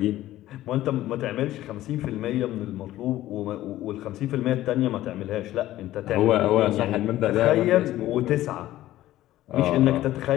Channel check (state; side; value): quieter; right; 14.7 dB